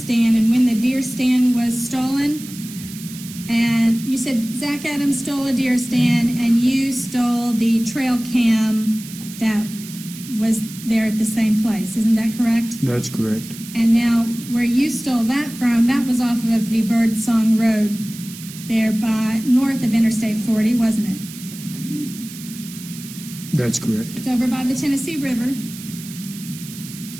and when the deer stand was stolen. And you said Zach Adams stole a deer stand and you stole the trail cam that was there at the same place. Isn't that correct? That's correct. And now where you stole that from, that was off of the Birdsong Road there by north of Interstate 40, wasn't it? That's correct. It's over by the Tennessee River.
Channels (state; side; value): noise; right; hiss, 15 dB below the sound